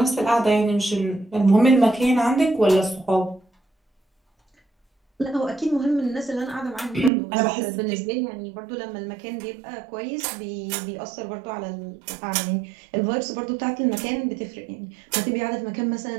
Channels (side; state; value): left; drops out; at 7.1 s